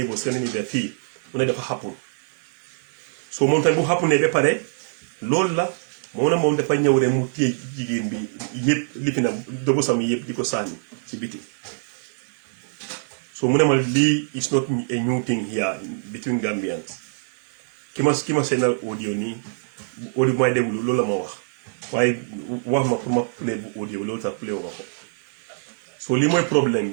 Scandinavia fii mu ne dafa xappul so moom tamit bu xàpp ne ba pare loolu la moom dafa ñëw rek mu téye jigéen bi yëpp lifi na dobu sam yëpp di ko sànni ci biti so mu ne ma lii is not a new thing here between Gambians ki ma seenal audio nii audio bu may déglu loolu la ma wax waaye wax ma pour ma play bu audio loolu tax play wa ko so lii mooy problème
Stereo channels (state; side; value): silent; left; digital silence